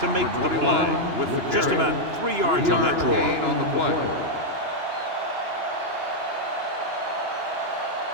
make the play. With the Just about 3 yards on that draw. On the play.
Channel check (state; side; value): late; left; 2.9 ms